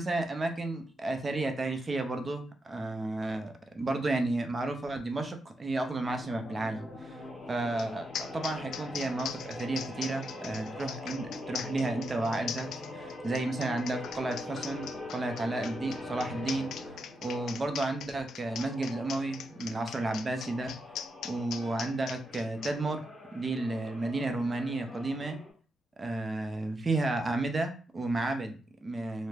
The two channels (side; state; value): both; normal; correlation 0.84